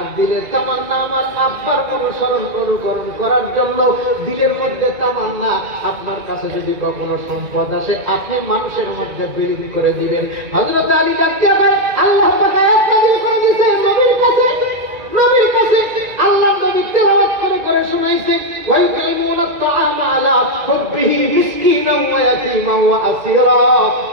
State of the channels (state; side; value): late; left; 2.3 ms